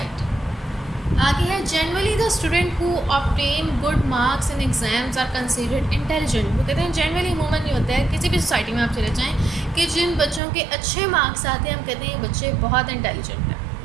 آگے ہے generally the student who obtain good marks in exams are considered intelligent. وہ کہتے ہیں جنرلی عموماً یہ ہوتا ہے کسی بھی سوسائٹی میں آپ چلے جائیں کہ جن بچوں کے اچھے مارکس آتے ہیں ہم کہتے ہیں یہ بچے بہت انٹیلیجنٹ ہیں.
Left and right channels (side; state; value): left; drops out; at 10.4 s